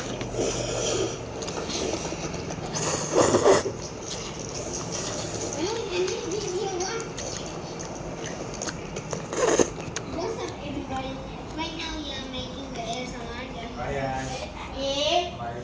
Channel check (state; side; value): identical; both; correlation 1.00